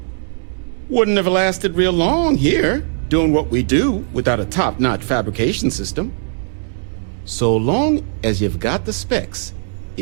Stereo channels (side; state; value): left; silent; digital silence